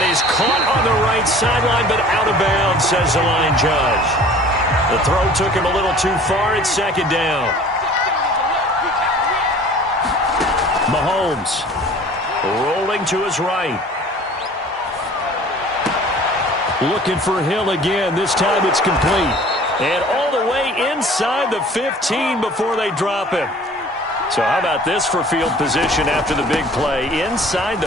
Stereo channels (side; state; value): both; normal; correlation 0.48